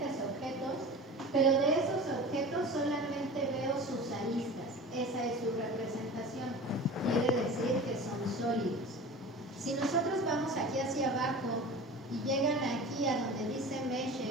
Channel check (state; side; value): normal; both; correlation 0.35